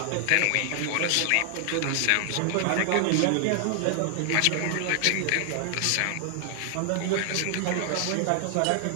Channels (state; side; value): different; both; correlation 0.00